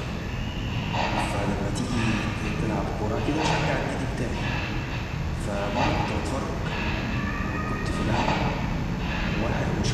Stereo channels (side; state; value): both; identical; correlation 1.00